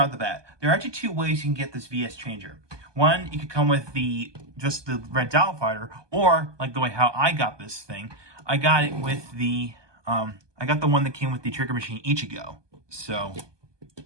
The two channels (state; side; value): late; left; 1.2 ms